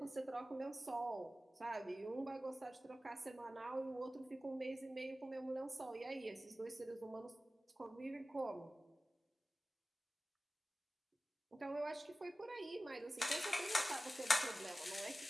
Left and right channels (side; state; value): both; normal; correlation 0.96